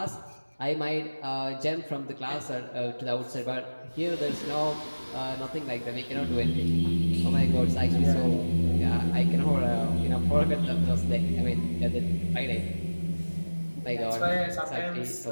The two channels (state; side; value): inverted; both; correlation -1.00